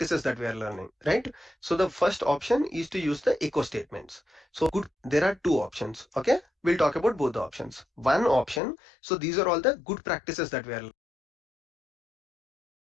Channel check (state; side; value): drops out; right; at 8.6 s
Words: that we are learning, right? So the first option is to use the echo statements. So there are two options. Okay, we'll talk about both the options. One option, so these are all the good practices that we are